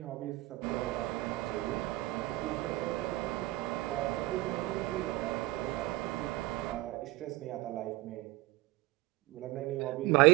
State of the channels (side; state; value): left; quieter; 19.0 dB